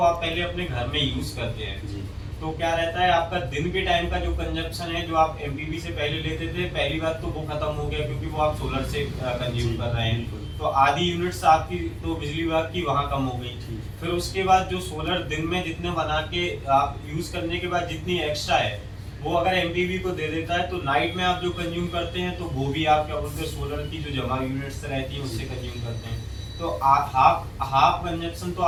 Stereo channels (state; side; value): identical; both; correlation 1.00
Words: आप पहले अपने घर में यूज करते हैं जी। तो क्या रहता है आपका दिन के टाइम का जो कंजप्शन है जो आप एमपीपी से पहले लेते थे, पहली बात तो वो खत्म हो गया क्योंकि वो आप सोलर से कंज्यूम कर रहे हैं। तो आधी यूनिट्स आपकी तो बिजली विभाग की वहाँ कम हो गई। फिर उसके बाद जो सोलर दिन में जितने बना के आप यूज करने के बाद जितनी एक्स्ट्रा है वो अगर एमपीवी को दे देता है, तो नाइट में आप जो कंज्यूम करते हैं तो वो भी आप क्या बोलते हैं सोलर की जो जमा यूनिट्स रहती है उससे कंज्यूम करते हैं। तो हाफ कंजप्शन तो